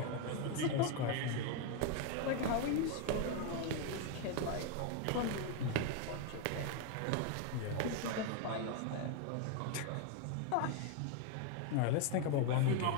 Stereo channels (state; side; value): different; both; correlation 0.01